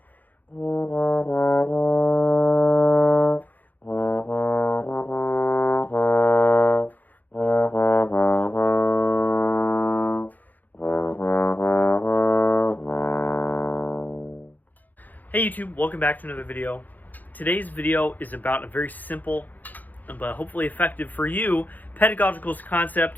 YouTube, welcome back to another video. Today's video is about a very simple but hopefully effective for you pedagogical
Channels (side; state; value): right; late; 0.083 ms